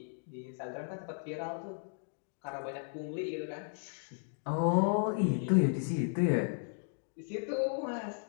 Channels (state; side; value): silent; right; digital silence